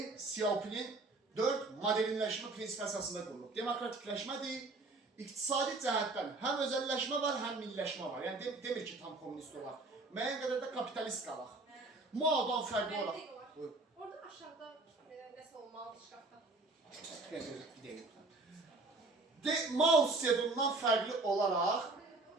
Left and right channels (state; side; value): quieter; left; 3.2 dB